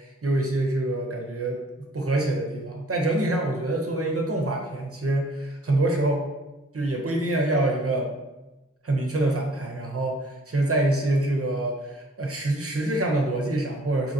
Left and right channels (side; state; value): both; normal; correlation 0.57